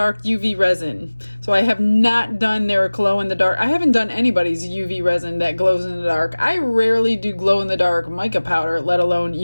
UV resin. So I have not done their glow in the dark. I haven't done anybody's UV resin that glows in the dark. I rarely do glow in the dark mica powder, let alone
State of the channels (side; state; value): both; inverted; correlation -1.00